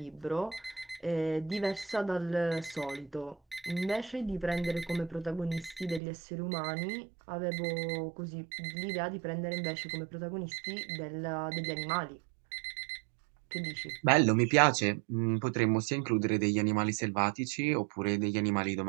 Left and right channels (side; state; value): left; drops out; at 6.0 s